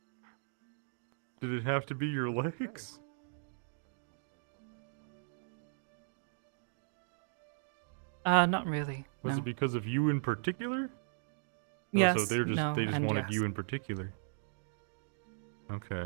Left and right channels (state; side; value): silent; left; digital silence